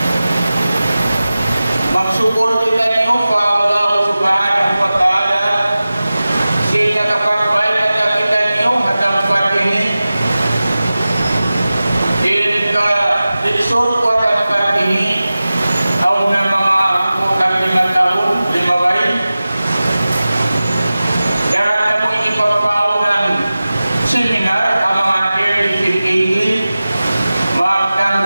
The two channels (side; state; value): both; inverted; correlation -0.96